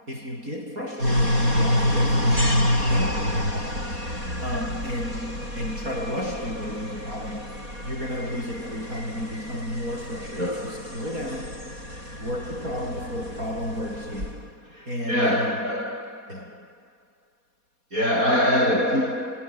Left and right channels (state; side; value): late; left; 4.2 ms